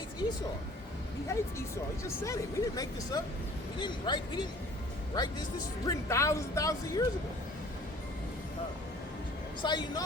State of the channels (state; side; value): normal; both; correlation 0.51